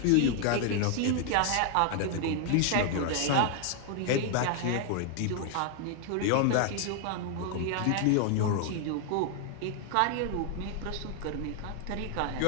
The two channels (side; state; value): both; different; correlation 0.00